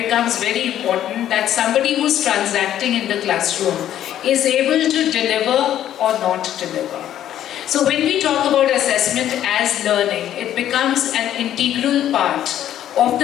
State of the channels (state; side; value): quieter; right; 11.4 dB